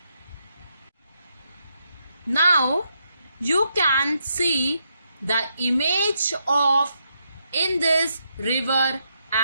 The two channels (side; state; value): both; inverted; correlation -0.79